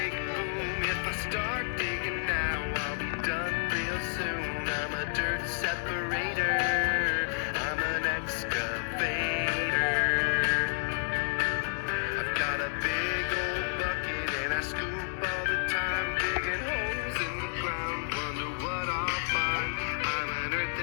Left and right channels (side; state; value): right; silent; digital silence